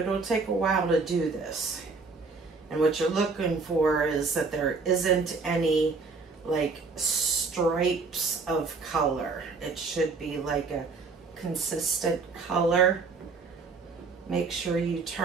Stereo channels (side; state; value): left; quieter; 4.3 dB